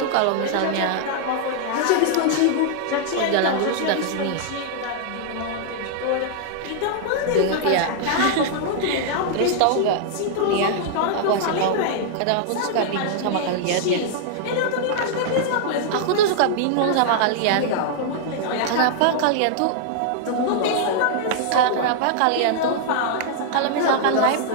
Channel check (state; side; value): different; both; correlation -0.01